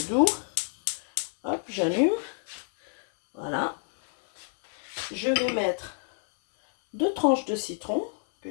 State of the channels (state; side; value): silent; right; 59 dB below the other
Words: doux. Hop, j'allume. Voilà. Je vais mettre 2 tranches de citron que